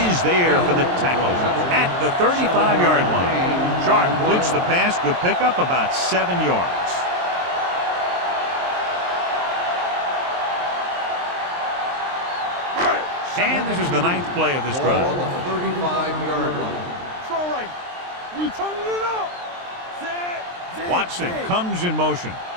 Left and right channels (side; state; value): left; late; 23 ms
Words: there for the tackle at the 35-yard line. Sharp completes the pass. Good pickup, about 7 yards. And this is the 9th play of this Ball drive. on the 35-yard line. Strong right. You turning it up. Set. Watson comes in motion.